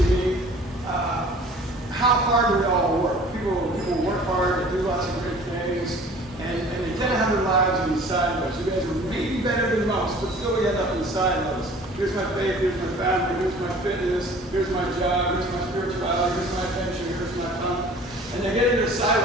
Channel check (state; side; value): normal; both; correlation 0.48